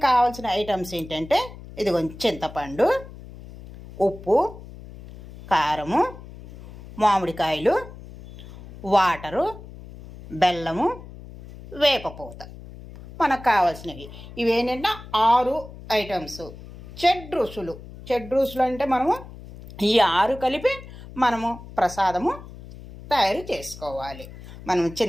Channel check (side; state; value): left; noise; hum, 16 dB below the sound